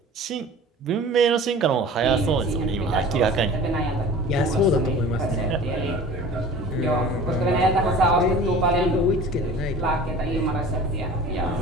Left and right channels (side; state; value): both; normal; correlation 0.41